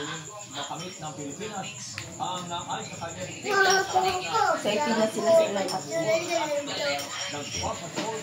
makamit ng Pilipinas ang ayon sa kanya sa ipinas sila sa ilang at nagpapatrol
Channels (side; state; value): both; identical; correlation 1.00